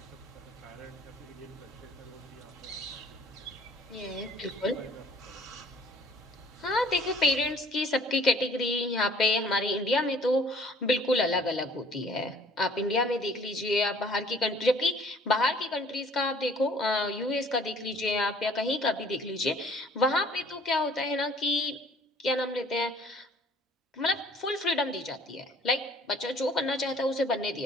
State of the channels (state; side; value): normal; both; correlation 0.55